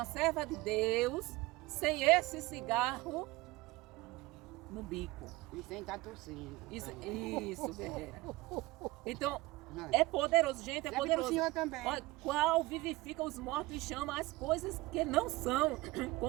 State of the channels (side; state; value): left; quieter; 20.7 dB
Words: serva de Deus, sem esse cigarro, no bico. E sem estar tossindo. Isso, Vera. Então, Não. é poderoso, gente, é Serve pro poderoso. senhor também. Olha, qual vivifica os mortos e chama as coisas que não são,